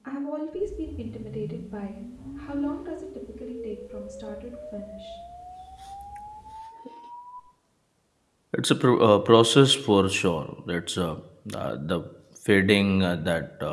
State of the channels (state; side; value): identical; both; correlation 1.00